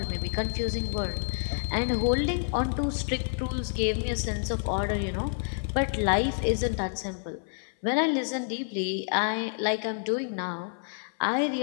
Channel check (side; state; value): right; silent; 59 dB below the other